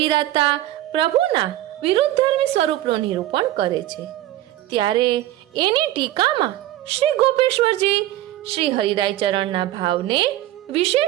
પ્રભુના વિરુદ્ધધર્મી સ્વરૂપનું નિરૂપણ કરે છે. ત્યારે એની ટીકામાં શ્રી ગોપેશ્વરજી શ્રી હરિરાય ચરણના ભાવને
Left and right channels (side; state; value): left; quieter; 14.6 dB